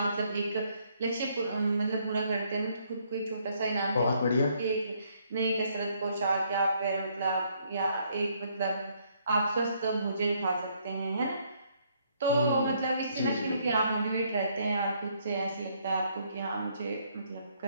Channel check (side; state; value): both; inverted; correlation -0.69